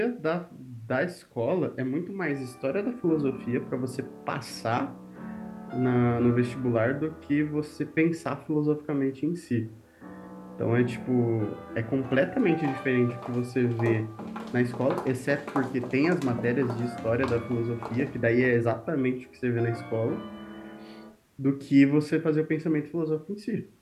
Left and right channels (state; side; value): identical; both; correlation 1.00